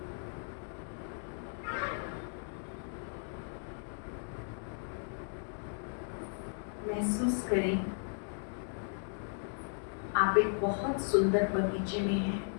महसूस करें आप एक बहुत सुंदर बगीचे में हैं।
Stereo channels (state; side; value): silent; right; 54 dB below the other